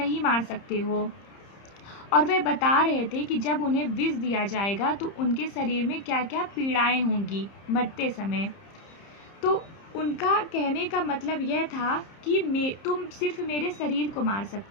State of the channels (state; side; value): late; right; 30 ms